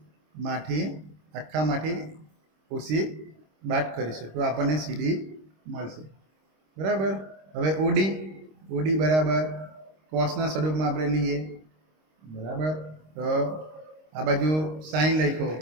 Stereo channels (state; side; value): late; left; 26 ms